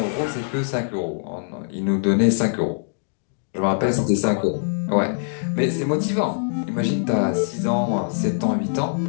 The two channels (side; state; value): right; silent; digital silence